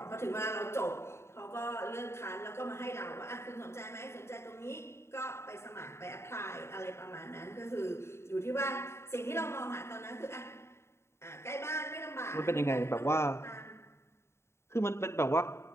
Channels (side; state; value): right; late; 0.13 ms